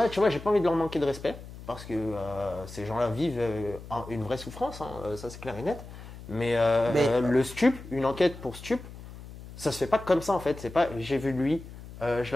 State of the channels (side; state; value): left; noise; hum, 15 dB below the sound